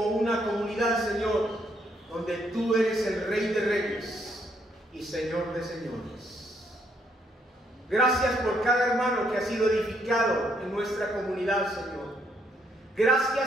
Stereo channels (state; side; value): normal; both; correlation 0.72